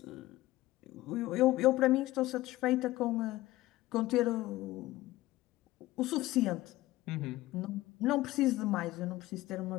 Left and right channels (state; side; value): quieter; right; 17.3 dB